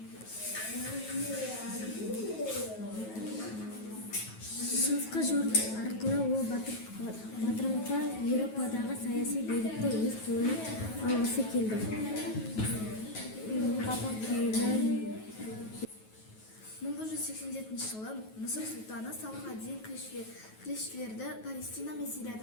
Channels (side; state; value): right; late; 9.3 ms